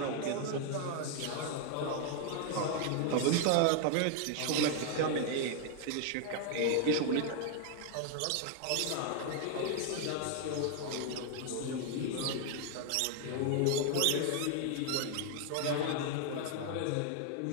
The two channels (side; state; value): both; different; correlation 0.00